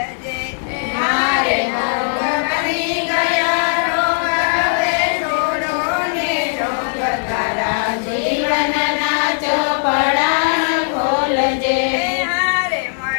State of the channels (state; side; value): silent; right; digital silence